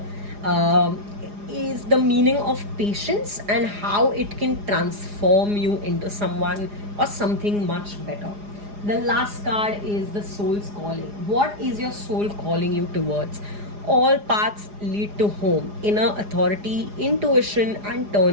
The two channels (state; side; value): late; left; 4.9 ms